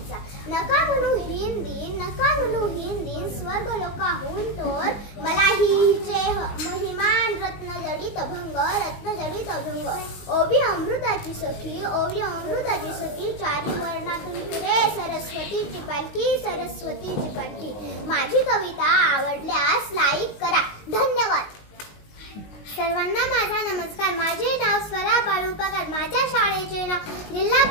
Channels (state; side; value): late; right; 19 ms